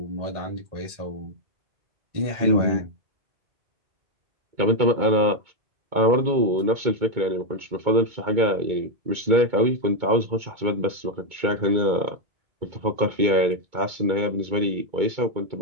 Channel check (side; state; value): left; late; 2.2 ms